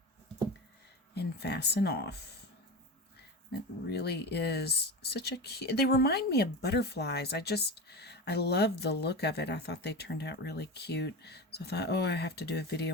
and fasten off. It really is such a cute, they remind me of butterflies. I love the look of it. I thought they turned out really cute. So I thought, oh, I have to do a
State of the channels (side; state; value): both; normal; correlation 0.25